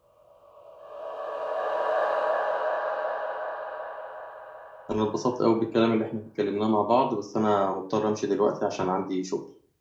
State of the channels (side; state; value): both; identical; correlation 1.00